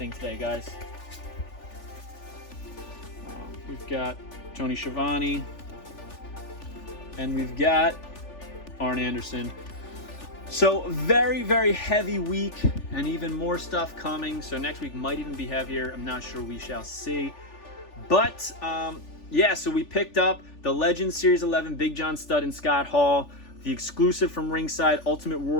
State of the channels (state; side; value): late; right; 3.4 ms